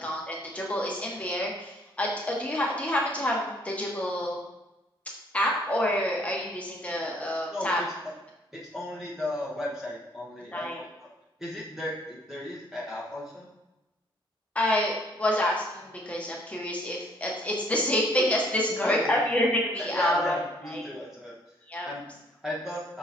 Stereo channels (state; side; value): normal; both; correlation 0.62